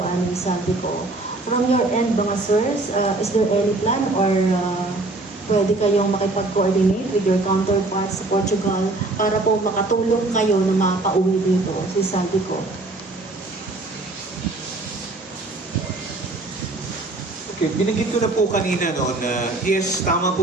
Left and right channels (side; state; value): left; quieter; 3.0 dB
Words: ni Saldico. From your end, mga sirs, is there any plan or pwede kayong makipag-coordinate with your counterparts sa Portugal para po makatulong kayo na mapauwi dito si Saldico? Okay, binanggit ko na po kanina no, na yes, tama po